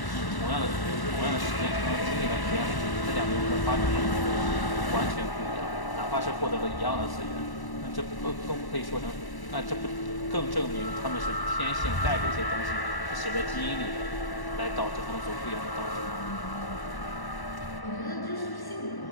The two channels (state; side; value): late; right; 1.1 ms